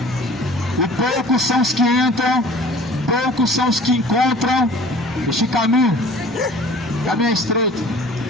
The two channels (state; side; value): normal; both; correlation 0.46